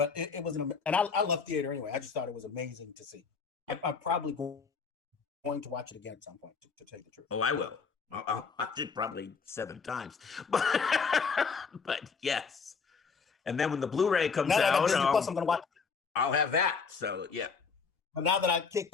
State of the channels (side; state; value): right; quieter; 5.3 dB